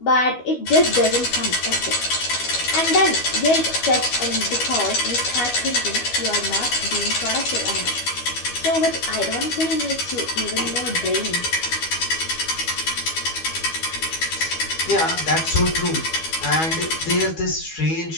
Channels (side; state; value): right; late; 12 ms